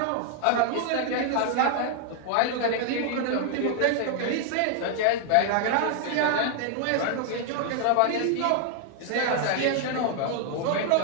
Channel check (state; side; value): different; both; correlation 0.00